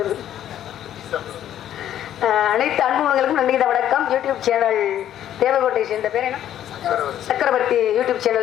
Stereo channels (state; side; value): quieter; right; 11.2 dB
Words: அனைத்து அன்புகளுக்கும் நன்றி இந்த வணக்கம். யூடியூப் சேனல் தேவகோட்டை சேர்ந்த பேர் என்ன, சக்கரவர்த்தி யூடியூப்